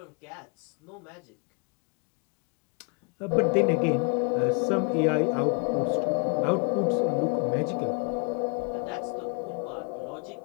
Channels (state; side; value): quieter; right; 37.6 dB